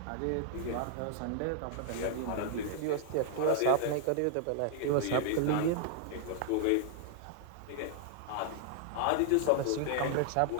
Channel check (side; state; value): both; different; correlation -0.01